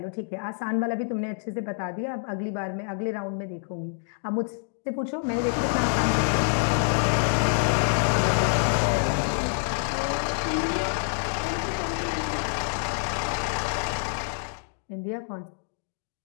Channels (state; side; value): silent; right; digital silence